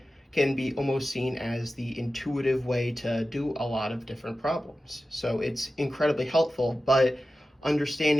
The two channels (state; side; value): normal; both; correlation 0.94